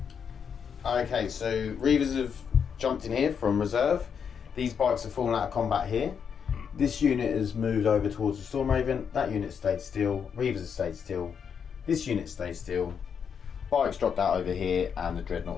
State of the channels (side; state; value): right; quieter; 7.1 dB